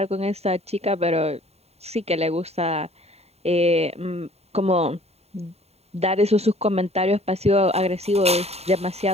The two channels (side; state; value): left; late; 0.30 ms